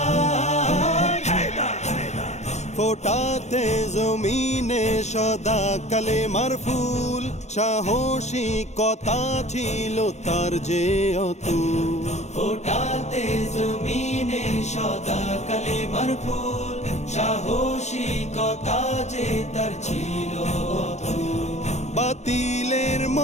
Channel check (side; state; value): right; late; 0.33 ms